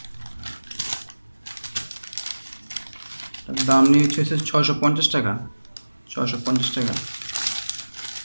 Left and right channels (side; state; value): both; inverted; correlation -1.00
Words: হচ্ছে 650 টাকা। 650 টাকা।